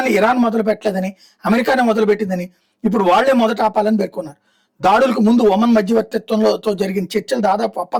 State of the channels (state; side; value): identical; both; correlation 1.00